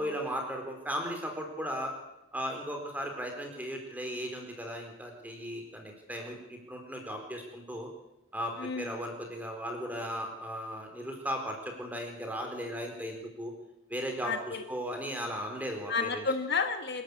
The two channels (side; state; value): both; normal; correlation 0.39